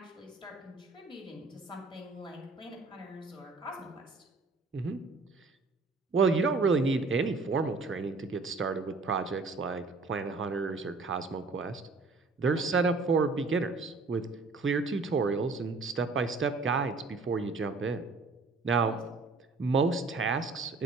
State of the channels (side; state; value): left; quieter; 3.8 dB